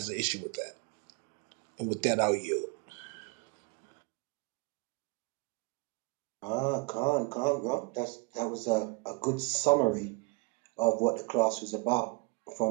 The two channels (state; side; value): quieter; left; 29.4 dB